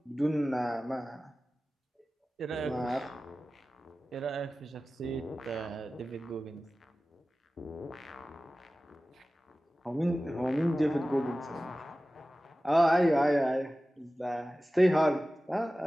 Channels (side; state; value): both; normal; correlation 0.96